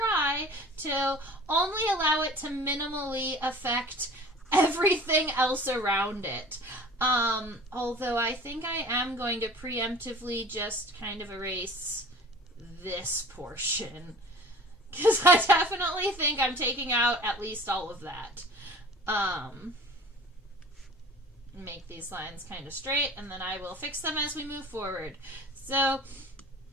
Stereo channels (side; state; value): both; normal; correlation 0.44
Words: to only allow it to minimally affect everything else around it. Although I think I am going to preemptively just kind of erase this portion, because I definitely think I'm taking out at least all of that. Make these lines kind of straight, and then I will fix them as we move forward. So